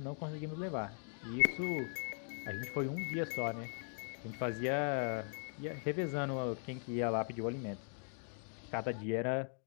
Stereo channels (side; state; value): right; silent; 51 dB below the other